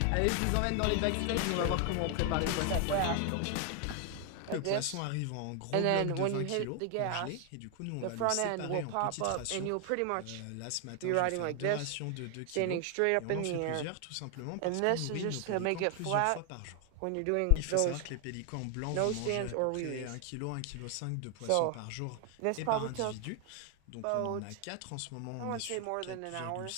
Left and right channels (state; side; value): different; both; correlation 0.00